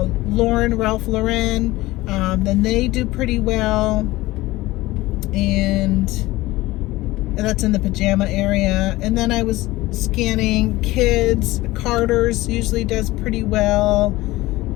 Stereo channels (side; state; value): right; quieter; 18.8 dB